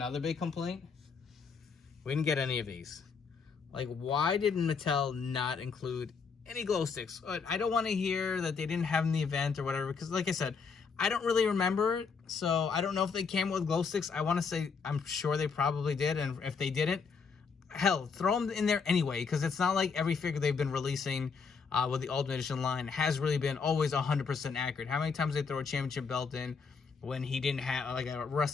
big complaint. We didn't get any of these. Like, why did Mattel not include any glow sticks? I don't want to hear that they didn't have them in the event or whatever, because like I said, I don't really remember it, so I don't know if they came with glow sticks. I want to say I'm sure they probably did, and if they didn't, hell, throw them in there anyway, because it's not like every figure they've been releasing with the Ultimate Edition line has really been always 100% accurate. How many times they throw a championship belt in when he didn't have, like a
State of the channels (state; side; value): quieter; right; 5.5 dB